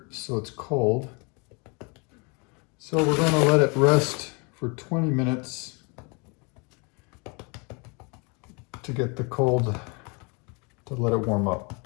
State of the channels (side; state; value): right; quieter; 31.6 dB